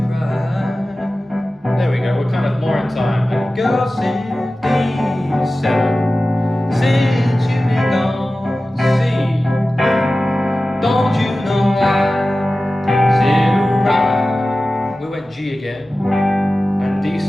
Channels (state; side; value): normal; both; correlation 0.95